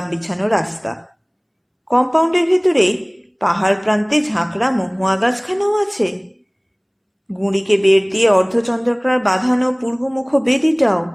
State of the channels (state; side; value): identical; both; correlation 1.00